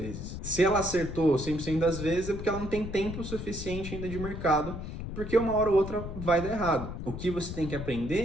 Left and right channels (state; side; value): noise; left; rumble, 7 dB below the sound